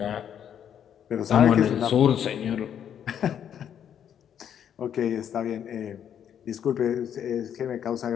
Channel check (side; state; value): right; quieter; 9.1 dB